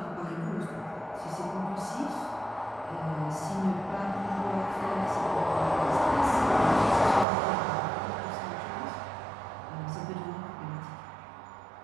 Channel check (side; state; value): left; drops out; at 7.2 s